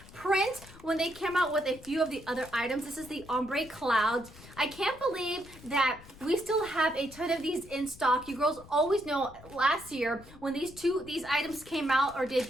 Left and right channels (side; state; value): left; noise; rumble, 19 dB below the sound